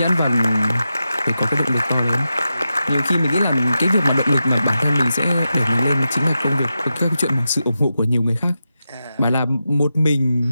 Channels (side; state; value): both; inverted; correlation -0.90